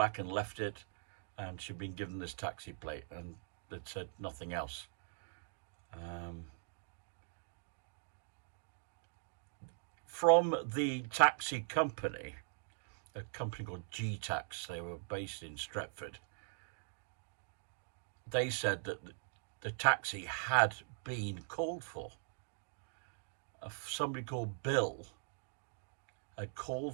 and left it, and she'd been given this taxi plate, and they'd said nothing else. From the taxi company, a company called G-Tax, they were based in Stretford, they said that the taxi had been called for. Somebody called Bill had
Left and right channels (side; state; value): left; silent; digital silence